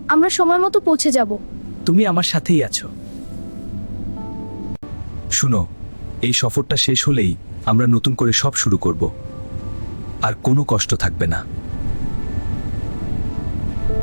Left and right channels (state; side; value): inverted; both; correlation -1.00